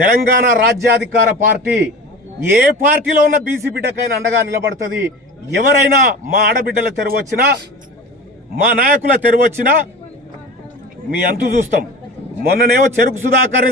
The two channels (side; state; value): both; normal; correlation 0.34